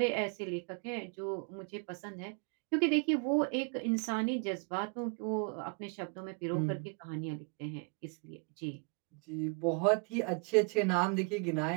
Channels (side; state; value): left; quieter; 34.3 dB